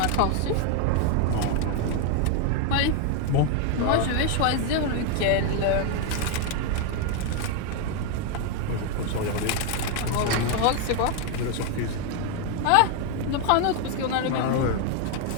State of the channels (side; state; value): both; different; correlation 0.01